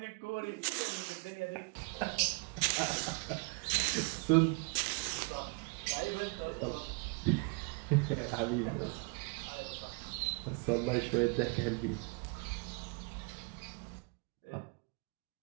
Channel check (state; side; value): quieter; left; 32.2 dB